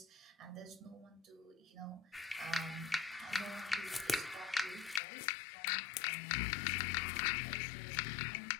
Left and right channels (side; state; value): right; drops out; at 5.0 s